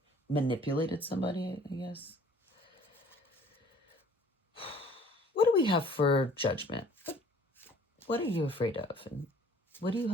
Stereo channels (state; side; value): normal; both; correlation 0.54